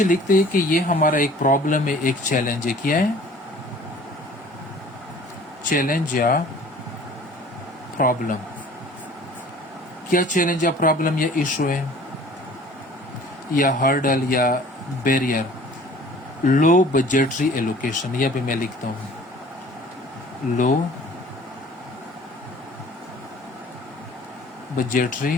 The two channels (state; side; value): normal; both; correlation 0.49